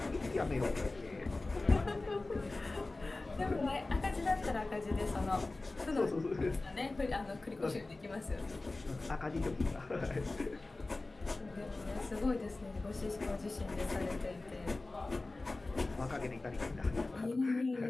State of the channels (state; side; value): quieter; right; 3.2 dB